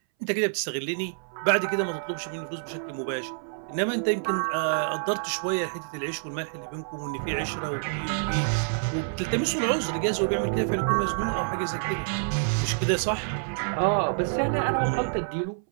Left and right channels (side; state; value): left; silent; 60 dB below the other